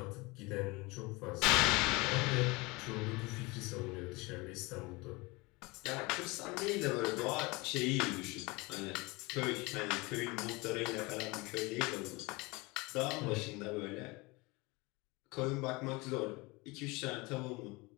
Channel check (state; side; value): quieter; right; 24.7 dB